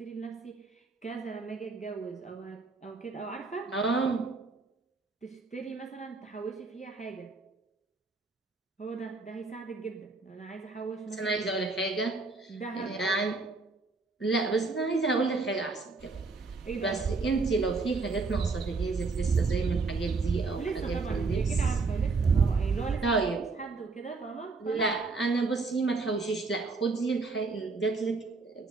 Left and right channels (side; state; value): left; quieter; 4.0 dB